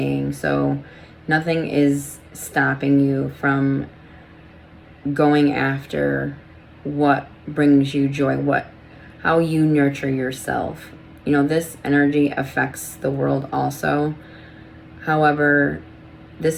So nothing is stopping you from going after what brings you joy, how you nurture yourself. You know, this energy affects the world also. However,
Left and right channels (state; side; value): identical; both; correlation 1.00